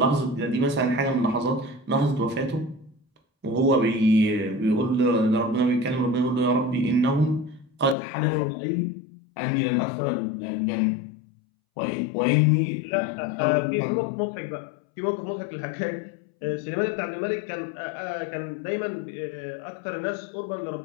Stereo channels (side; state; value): right; drops out; at 8.0 s